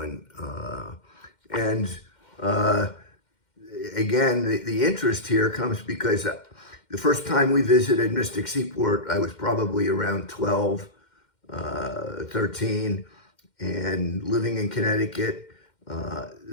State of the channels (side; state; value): right; late; 2.1 ms